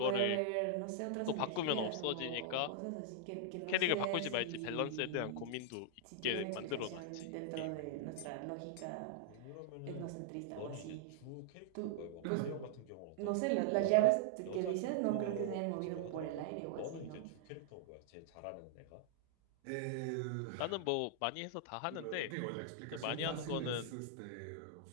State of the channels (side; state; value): both; different; correlation -0.01